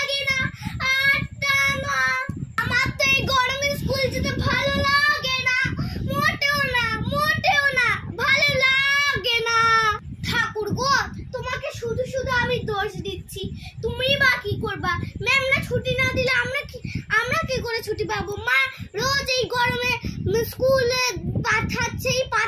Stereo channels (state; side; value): identical; both; correlation 1.00